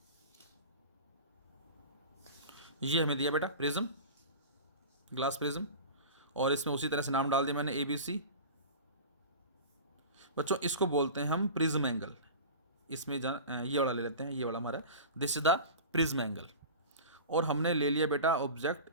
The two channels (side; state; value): both; inverted; correlation -0.34